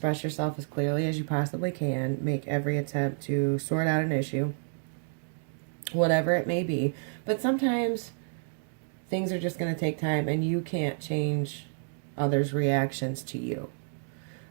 yourself as clearly as you possibly can, make every attempt to sort out an issue, whatever it may be. But sometimes things are just going to take time, and you can't change others' reactions to you.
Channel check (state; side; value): silent; left; digital silence